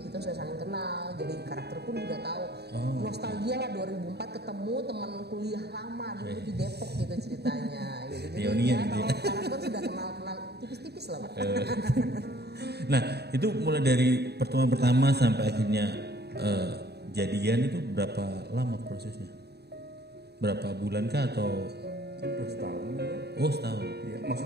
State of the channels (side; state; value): left; late; 0.48 ms